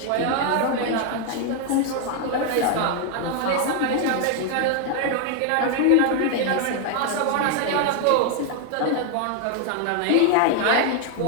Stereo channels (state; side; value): different; both; correlation 0.00